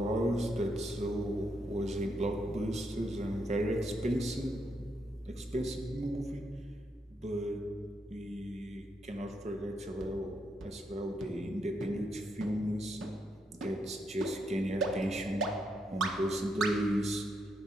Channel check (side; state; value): both; normal; correlation 0.79